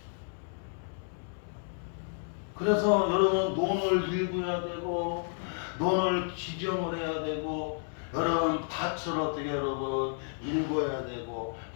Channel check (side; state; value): right; silent; digital silence